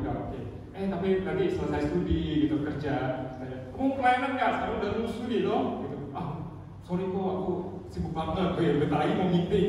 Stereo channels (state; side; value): identical; both; correlation 1.00